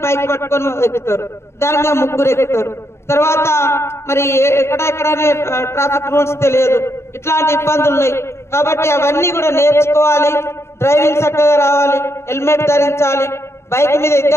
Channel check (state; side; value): late; right; 0.13 ms